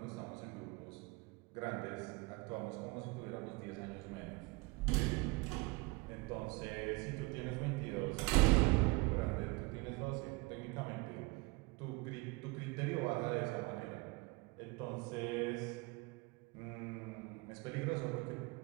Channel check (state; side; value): quieter; left; 25.3 dB